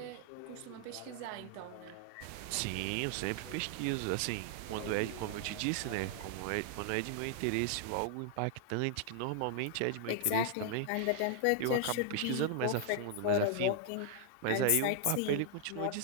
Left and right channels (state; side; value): different; both; correlation 0.00